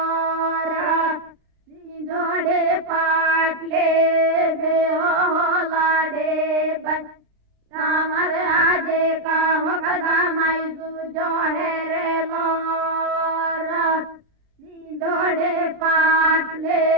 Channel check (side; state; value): left; late; 36 ms